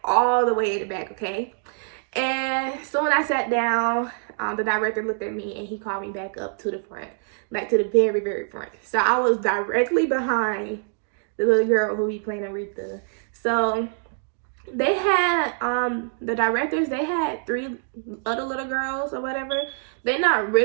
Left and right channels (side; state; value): left; silent; digital silence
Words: all the way in the back, okay? And so when I sat down, the director looked at me and he called me back up to the front, like to the very, very front. So I was directly behind the little girl who be playing Aretha. So they had, the directors, they had 3 other little girls or whatever. They're not